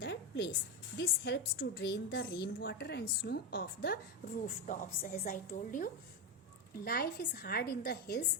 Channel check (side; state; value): both; normal; correlation 0.11